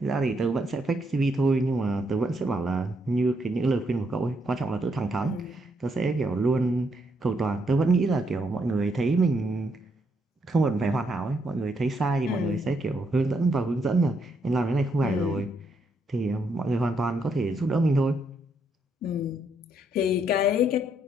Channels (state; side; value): normal; both; correlation 0.75